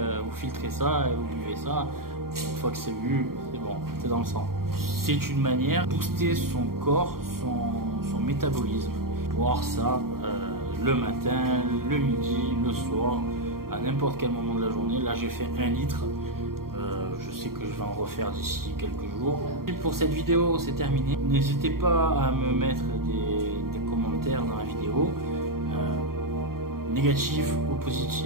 vous filtrez ça et vous buvez ça, une fois que c'est bu, c'est bon, c'est dans le sang. C'est une manière de booster son corps, son métabolisme. Boire ça le matin, le midi, le soir, à n'importe quel moment de la journée. Là j'ai fait 1 litre. Je sais que je vais en refaire d'ici quelques jours. Et pour cette vidéo, c'est terminé. N'hésitez pas à me mettre des commentaires dans la vidéo, négatifs ou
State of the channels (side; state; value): left; late; 0.93 ms